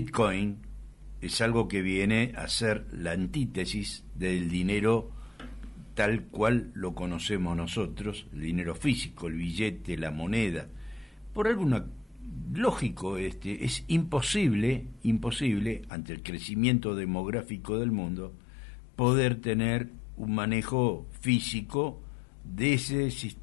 es algo que viene a ser la antítesis del dinero tal cual lo conocemos nosotros, el dinero físico, el billete, la moneda. Por alguna lógico es imposible ante el crecimiento demográfico del mundo poder tener un manejo físico de ese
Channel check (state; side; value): drops out; right; at 15.9 s